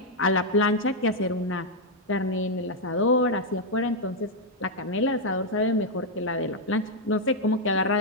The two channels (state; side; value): normal; both; correlation -0.01